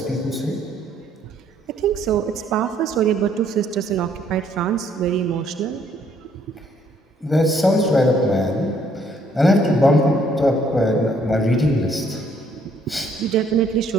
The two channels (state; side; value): normal; both; correlation 0.66